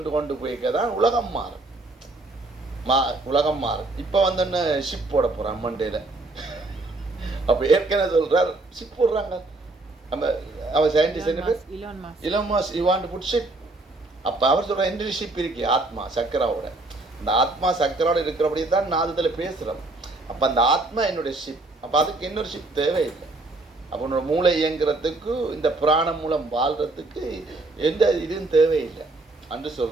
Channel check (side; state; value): left; quieter; 3.0 dB